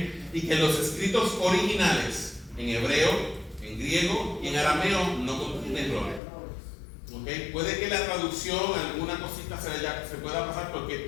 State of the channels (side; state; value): right; drops out; at 6.2 s